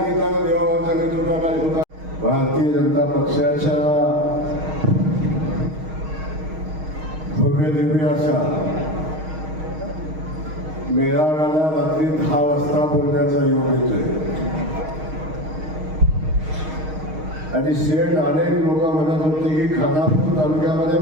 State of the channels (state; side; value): late; left; 6.4 ms